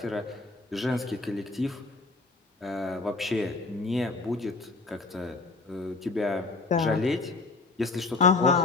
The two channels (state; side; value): quieter; right; 3.7 dB